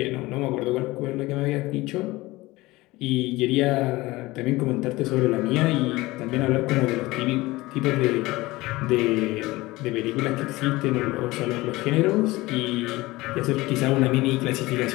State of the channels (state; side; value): quieter; right; 20.1 dB